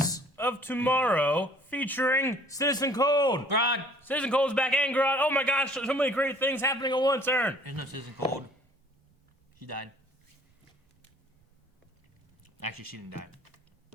of Tomorrow featuring Citizen Cold. Grodd. Citizen Cold's back and Grodd. Oh my gosh, so many great things happening at once, Aaron. There's no Citizen Cold. She died. Actually, she didn't die.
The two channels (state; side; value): normal; both; correlation 0.54